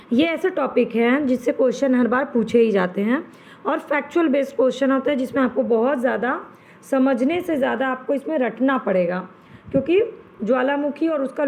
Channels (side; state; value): both; identical; correlation 1.00